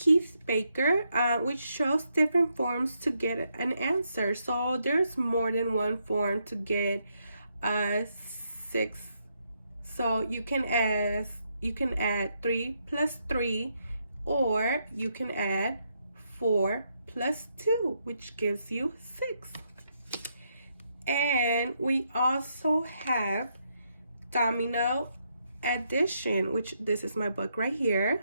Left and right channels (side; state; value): both; inverted; correlation -0.78